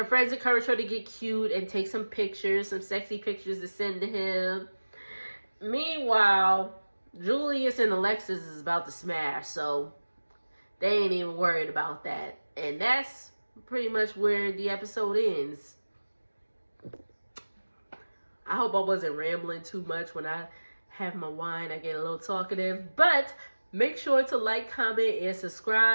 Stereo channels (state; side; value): inverted; both; correlation -1.00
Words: friends encourage her to get cute and take some pictures, some sexy pictures to send to him. Meanwhile, Julius and Alexis is about to smash, so they ain't even worried about that. And that's pretty much where the episode ends. I hope I wasn't rambling too much. When I have my wine, I get a little talkative. But make sure to like, comment, and